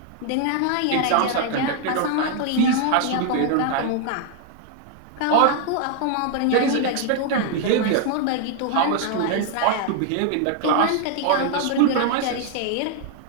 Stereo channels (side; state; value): both; different; correlation 0.00